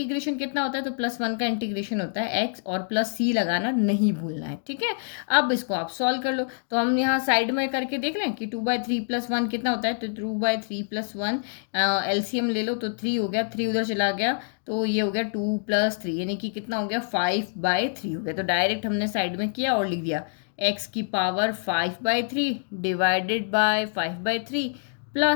कितना होता है, तो +1 का इंटीग्रेशन होता है x, और प्लस c लगाना नहीं भूलना है। ठीक है, अब इसको आप सॉल्व कर लो, तो हम यहाँ साइड में करके देख लें कि 2/3+1 कितना होता है, तो 2/3+1 एलसीएम ले लो तो 3 हो गया, 3 उधर चला गया तो ये हो गया 2 + 3 यानी कि कितना हो गया, 5/3 हो गया। तो डायरेक्ट हमने साइड में किया और लिख दिया x⁻5/3 divided by 5/3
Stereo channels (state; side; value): silent; right; digital silence